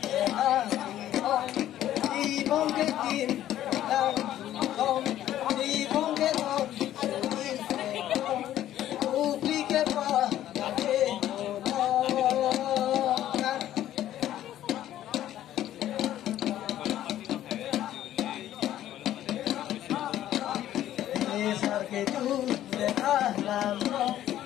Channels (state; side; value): quieter; right; 12.5 dB